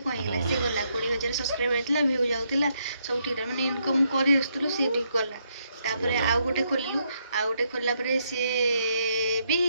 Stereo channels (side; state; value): both; inverted; correlation -0.76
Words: କ'ଣ ହେଇଗଲା, ସେ ଗଲା। 20,000 ସବସ୍କ୍ରାଇବର୍ ଥିଲା, ଭିଉ ଯାଉଥିଲା, ସବୁ ଠିକ୍ ଥିଲା, ମାନେ ଇନକମ୍ କରି ଆସୁଥିଲୁ, ସିଏ ବି ଗଲା। ତାପରେ ଆଉ ଗୋଟେ ଖୋଲିଲୁ, ଆଉ ଗୋଟେ ଖୋଲିଲା ପରେ ସିଏ ବି